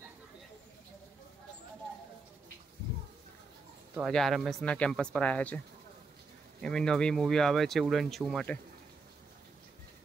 तो आज RMS ना कैंपस पर आया छे एमनी नवी मूवी आवे छे उड़न शू माटे।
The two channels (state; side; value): quieter; left; 4.1 dB